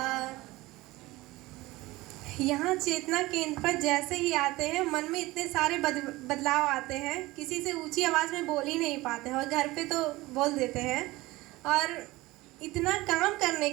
यहाँ चेतना केंद्र पर जैसे ही आते हैं मन में इतने सारे बदलाव आते हैं, किसी से ऊंची आवाज़ में बोल ही नहीं पाते हैं और घर पे तो बोल देते हैं। और इतना काम करने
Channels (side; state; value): left; quieter; 19.8 dB